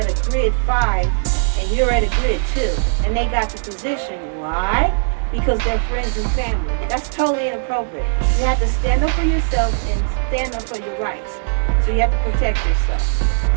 a grid 5 and you're at a grid 2 and they got the position, why? Because they're friends and family. That's totally inappropriate. You have to stand up for yourself and stand up for your rights. So you have to protect yourself.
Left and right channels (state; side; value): silent; left; 67 dB below the other